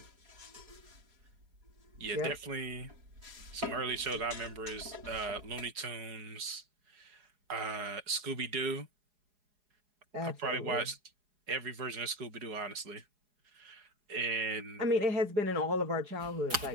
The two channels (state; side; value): late; left; 4.8 ms